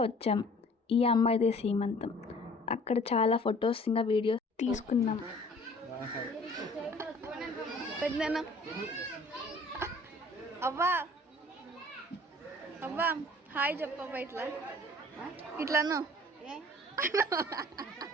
వచ్చాం. ఈ అమ్మాయిదే సీమంతం. అక్కడ చాలా ఫొటోస్ ఇంకా వీడియోస్ తీసుకున్నాం. పెద్దనా అవ్వా అవ్వా హాయ్ చెప్పవ్వా, ఇట్లాను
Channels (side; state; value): both; normal; correlation 0.51